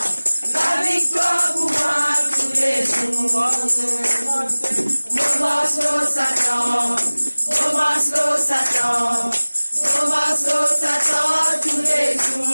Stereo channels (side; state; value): both; inverted; correlation -1.00